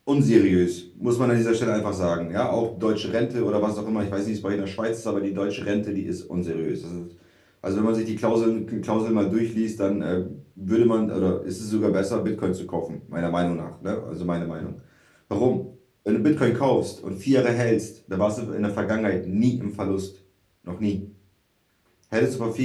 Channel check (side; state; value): both; identical; correlation 1.00